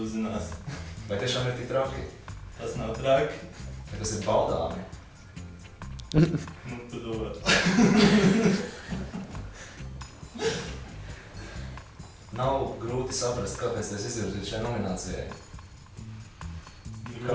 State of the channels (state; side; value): identical; both; correlation 1.00